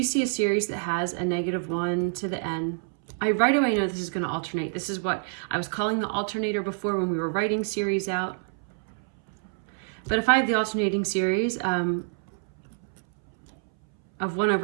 see a series that has a -1 to the n, I right away know this is going to alternate. This is what I was calling the alternator before when we were writing series out. But if I have the alternating series of 1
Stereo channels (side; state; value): left; silent; 60 dB below the other